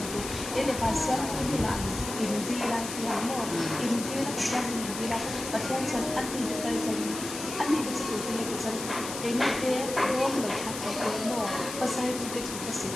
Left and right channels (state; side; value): noise; left; hiss, 8 dB below the sound